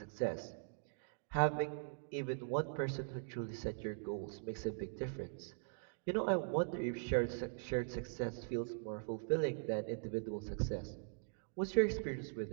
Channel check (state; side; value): silent; left; digital silence